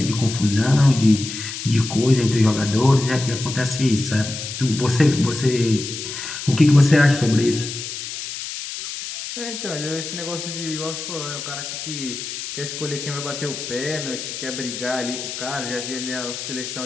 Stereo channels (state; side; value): noise; left; hiss, 7 dB below the sound